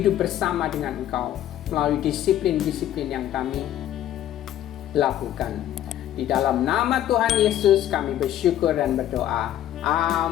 bersama dengan Engkau melalui disiplin-disiplin yang kami lakukan. Di dalam nama Tuhan Yesus kami bersyukur dan berdoa.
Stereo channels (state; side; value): quieter; right; 12.0 dB